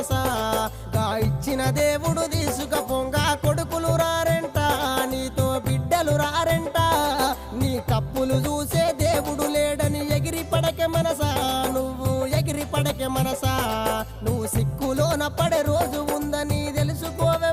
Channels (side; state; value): both; identical; correlation 1.00